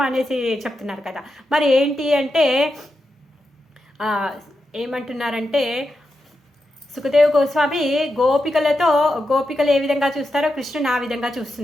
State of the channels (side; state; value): both; normal; correlation 0.88